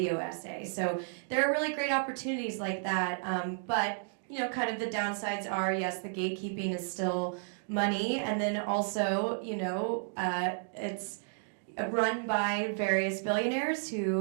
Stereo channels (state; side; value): silent; left; digital silence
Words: essay. So there are really great opportunities like that, but, you know, kind of the downsides are, yes, the gatekeeping is still money, and then also, it's run by various billionaires who